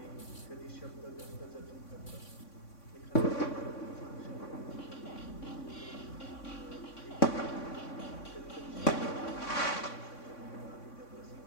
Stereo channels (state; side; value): late; right; 3.5 ms